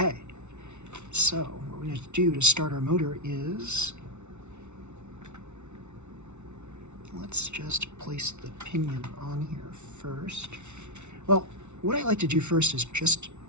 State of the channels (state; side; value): late; left; 0.82 ms